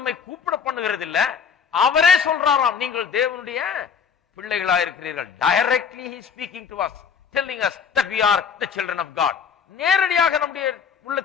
கூப்பிட பண்ணுகிறது இல்ல, அவரே சொல்றாராம் நீங்கள் தேவனுடைய பிள்ளைகளா இருக்கிறீர்கள். Directly he speaking to us, telling us that we are the children of God. நேரடியாக நம்முடைய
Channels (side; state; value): right; quieter; 6.7 dB